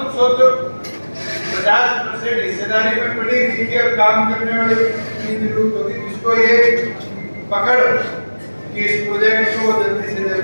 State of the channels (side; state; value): both; inverted; correlation -1.00